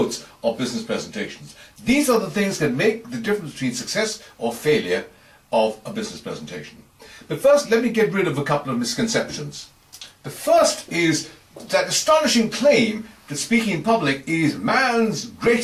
of business presentations. These are the things that make the difference between success or failure of a business presentation. But first, let me get rid of a couple of misconceptions. The first is that astonishing claim that speaking in public is man's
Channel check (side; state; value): both; identical; correlation 1.00